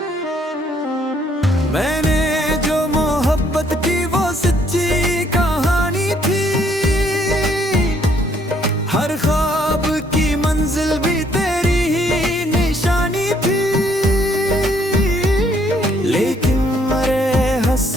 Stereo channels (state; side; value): normal; both; correlation 0.67